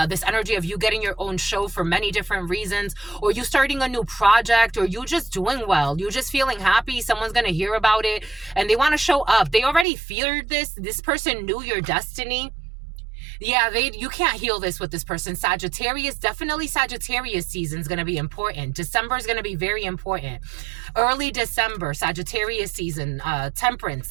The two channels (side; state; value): left; drops out; at 9.9 s